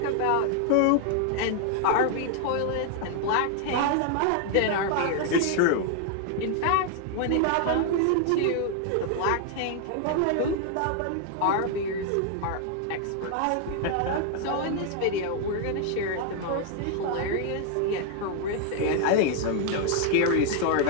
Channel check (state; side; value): different; both; correlation 0.00